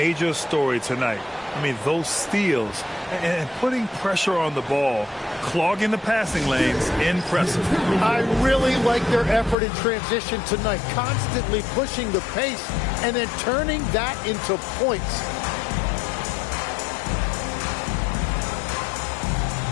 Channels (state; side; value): drops out; right; at 9.6 s